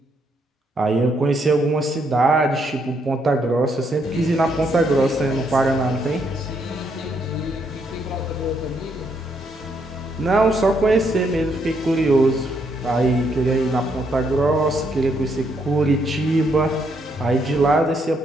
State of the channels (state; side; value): normal; both; correlation 0.74